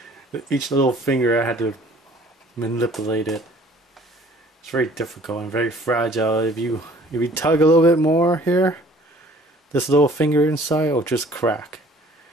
Each little finger I had to manipulate it. It's very difficult and very fragile. If you tug a little bit more here, this little finger inside will just crack.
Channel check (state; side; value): normal; both; correlation 0.53